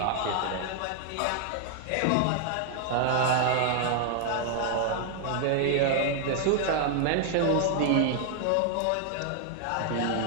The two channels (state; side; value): different; both; correlation 0.00